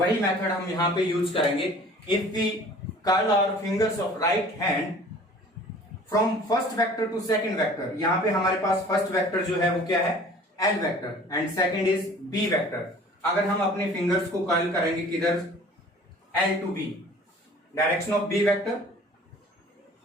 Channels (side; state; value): both; normal; correlation 0.48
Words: मेथड हम यहां पे यूज करेंगे। If we curl our fingers of right hand from first vector to second vector, यहां पे हमारे पास फर्स्ट वेक्टर जो है वो क्या है, L vector, and second is B vector. अगर हम अपने फिंगर्स को कर्ल करेंगे किधर, L to B, direction of B vector